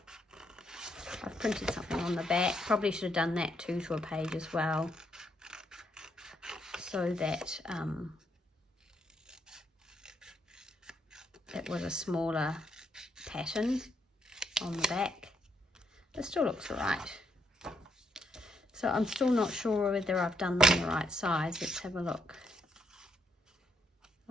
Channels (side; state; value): both; normal; correlation 0.75